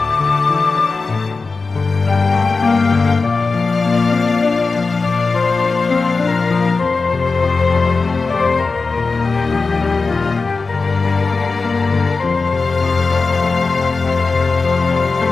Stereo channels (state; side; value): quieter; right; 4.1 dB